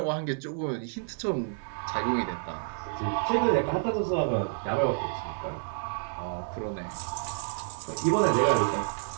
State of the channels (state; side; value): silent; left; 58 dB below the other